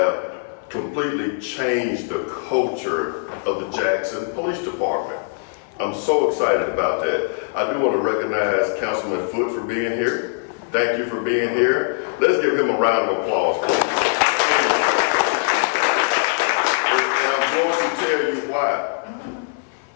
completely changed the culture of the Jackson Police Department. I'm so excited about that. I do want to recognize Councilman Foote for being here. Thank you for being here. Let's give him a round of applause, please. And I'm going to tell you why.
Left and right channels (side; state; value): right; silent; 59 dB below the other